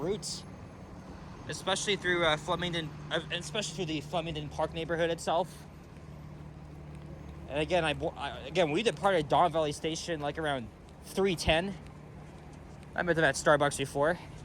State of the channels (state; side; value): identical; both; correlation 1.00